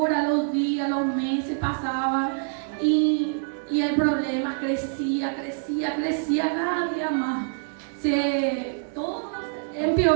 los días, los meses pasaban y el problema crecía cada día más. Todo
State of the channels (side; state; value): left; silent; digital silence